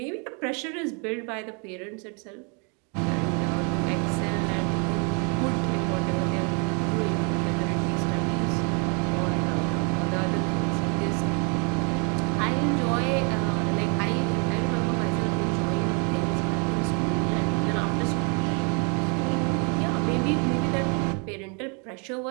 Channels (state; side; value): quieter; left; 35.9 dB